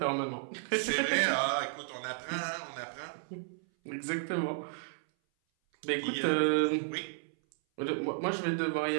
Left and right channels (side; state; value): left; silent; 56 dB below the other